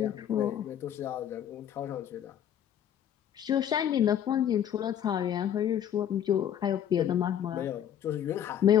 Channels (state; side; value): quieter; right; 10.0 dB